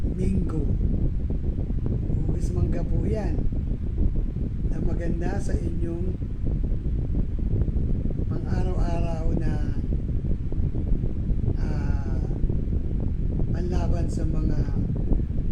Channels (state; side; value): identical; both; correlation 1.00